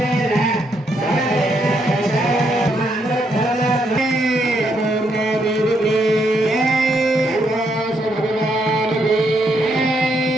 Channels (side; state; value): both; normal; correlation 0.76